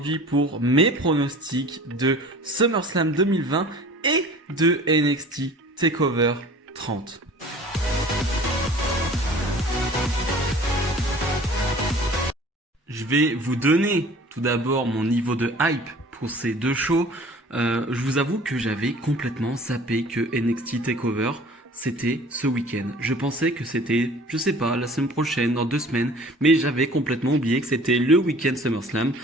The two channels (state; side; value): normal; both; correlation 0.47